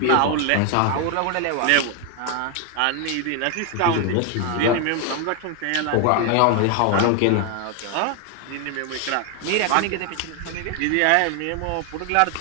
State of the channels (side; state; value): both; different; correlation 0.01